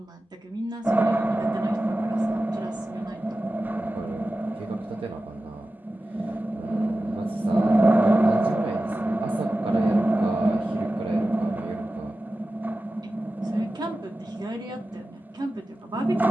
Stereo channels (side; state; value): both; normal; correlation 0.94